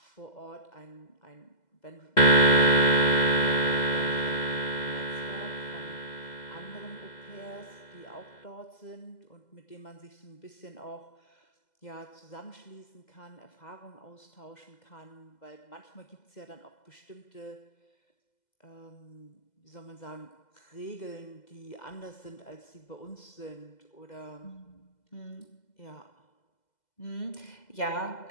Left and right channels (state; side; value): late; right; 2.0 ms